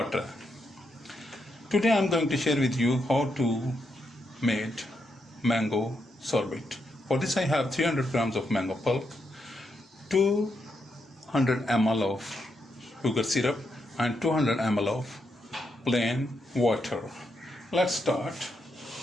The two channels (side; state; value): both; normal; correlation 0.81